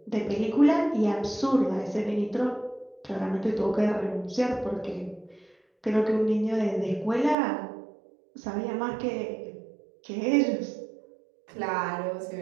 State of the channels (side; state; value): left; drops out; at 7.4 s